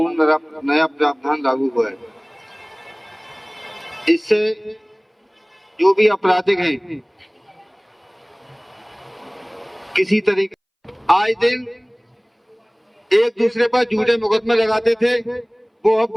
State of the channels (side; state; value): both; identical; correlation 1.00